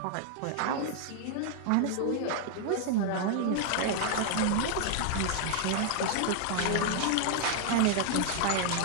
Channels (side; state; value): both; different; correlation 0.00